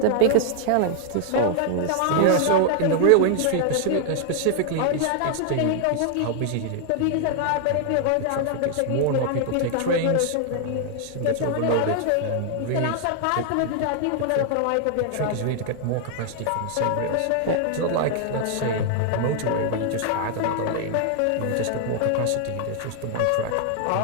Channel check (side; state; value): both; different; correlation 0.00